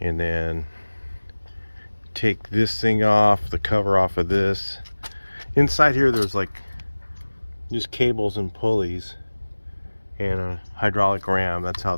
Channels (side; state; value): both; inverted; correlation -1.00